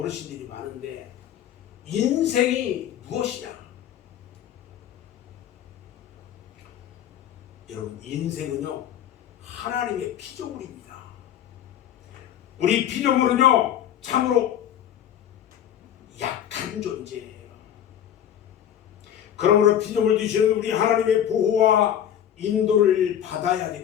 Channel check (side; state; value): right; quieter; 10.2 dB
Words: 많은데 인생이 무엇이냐? 여러분, 인생은요 하나님의 피조물입니다. 우리 피조물은요 참으로 약한 존재예요. 그러므로 피조물 되시는 우리 하나님의 보호와 인도를 받아야